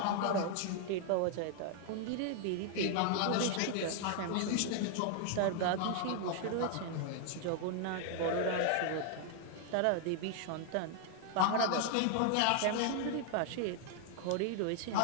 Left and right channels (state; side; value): different; both; correlation 0.00